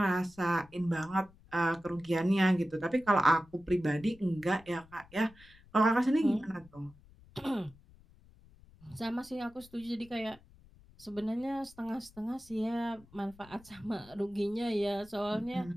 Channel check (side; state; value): left; noise; rumble, 25 dB below the sound